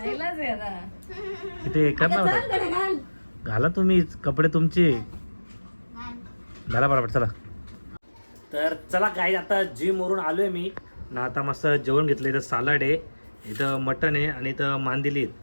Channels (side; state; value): both; inverted; correlation -1.00